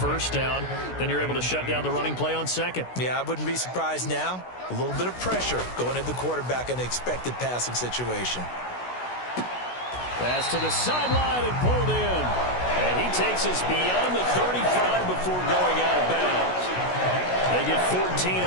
down. Then you're able to shut down the running play on 2nd. Yeah, I wouldn't be surprised now. A little bit of pressure going at the quarterback in an expected passing situation. Pass to the sideline and pulled in. And he takes us beyond the 35 before going out of bounds. They get 14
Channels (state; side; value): late; right; 16 ms